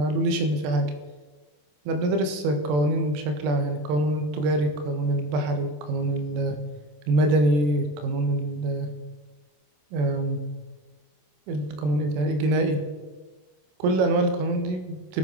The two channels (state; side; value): late; left; 27 ms